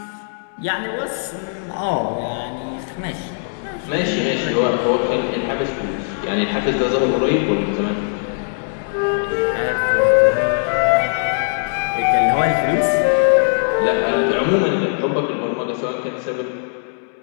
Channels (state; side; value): silent; right; digital silence